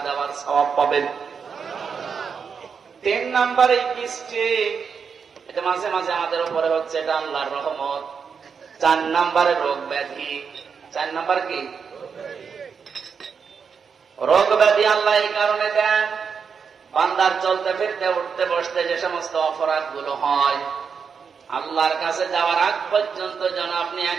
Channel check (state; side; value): quieter; left; 6.2 dB